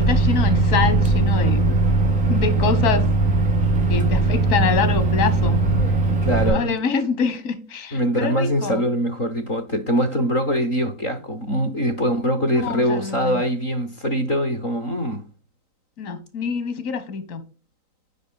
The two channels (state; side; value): late; right; 3.9 ms